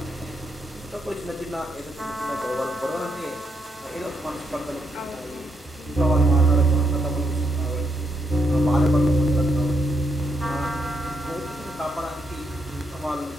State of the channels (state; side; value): normal; both; correlation 0.78